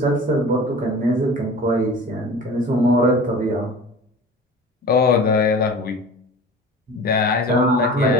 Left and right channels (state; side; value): normal; both; correlation 0.39